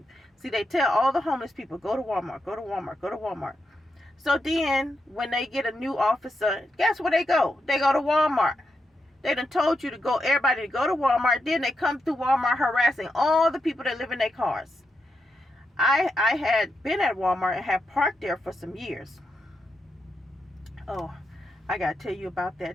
See, they tell all the homeless people, go to Walmart, go to Walmart, go to Walmart. So then when they get a new officer, guess where they go? They go to Walmart. They done told you to go, everybody to go to Walmart. Then they come through Walmart harassing all the people that live in their cars. I had been at Walmart and had parked there for some years. Oh, I gotta tell you about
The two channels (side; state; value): both; normal; correlation 0.85